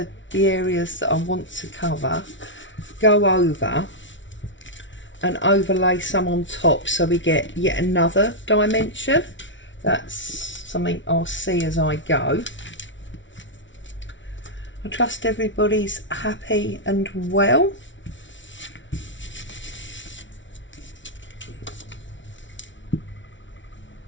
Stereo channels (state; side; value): late; right; 0.55 ms